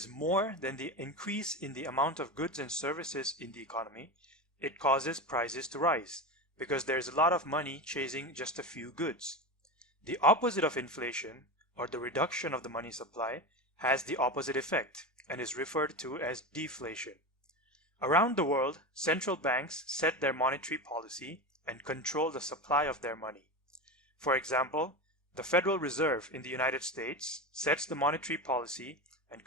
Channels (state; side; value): normal; both; correlation 0.22